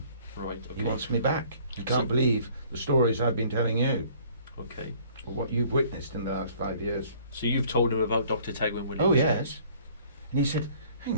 Right. Okay. He wants me back. You can't So- believe the stories I've been telling you, Okay. or what you've witnessed in the last 5 years. So you've told him about Dr. Tegwin Williams? Oh yes. And he said, "Hang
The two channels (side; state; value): both; inverted; correlation -0.56